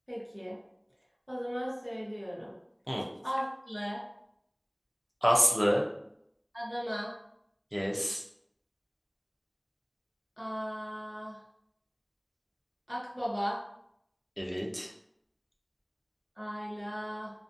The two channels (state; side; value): identical; both; correlation 1.00